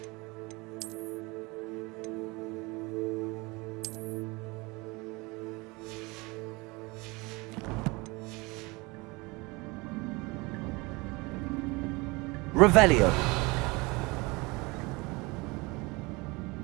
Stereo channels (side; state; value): left; quieter; 25.1 dB